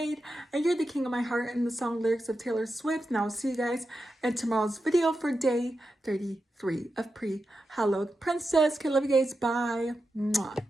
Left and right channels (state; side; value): normal; both; correlation 0.89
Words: And you're the king of my heart in the song lyrics of Taylor Swift. And I'll see you guys in tomorrow's video for day 33 of Pre-Hallowed Princess. Okay, love you guys. Bye. Mwah.